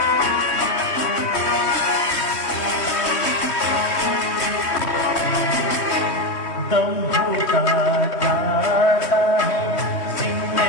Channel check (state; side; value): late; right; 3.1 ms